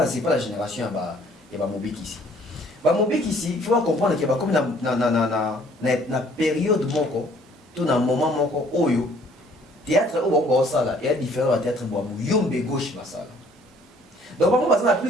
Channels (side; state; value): both; normal; correlation 0.59